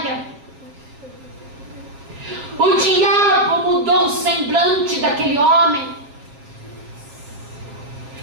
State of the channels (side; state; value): left; late; 7.2 ms